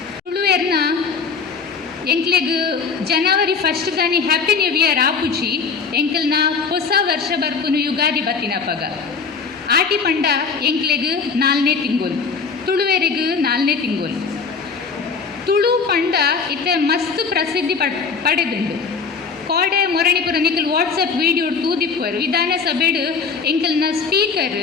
ತುಳುವೆರ್ನ ಎಂಕ್ಲೆಗ್ ಜನವರಿ 1 ದಾನಿ ಹ್ಯಾಪಿ ನ್ಯೂ ಇಯರ್ ಆಪುಜಿ ಎಂಕಲ್ನ ಹೊಸ ವರ್ಷ ಬರ್ಪುನು ಯುಗಾದಿ ಬತ್ತಿನಪ್ಪಗ ಆಟಿ ಪಂಡ ಎಂಕ್ಲೆಗ್ 4ನೇ ತಿಂಗೋಲ್ ತುಳುವೆರಿಗ್ 4ನೇ ತಿಂಗೋಲ್ ತುಳು ಪಂಡ ಇತ್ತೆ ಮಸ್ತ್ ಪ್ರಸಿದ್ಧಿ ಪಡೆದುಂಡು ಕೋಡೆ ಮೊರಣಿಪುರ ನಿಖಲ್ ವಾಟ್ಸಪ್ ವಿಡಿಯೋ ತೂದಿಪ್ಪರು ವಿಧಾನಸಭೆಡು ಎಂಕಲ್ನ ಸ್ಪೀಕರ್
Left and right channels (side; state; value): right; quieter; 5.3 dB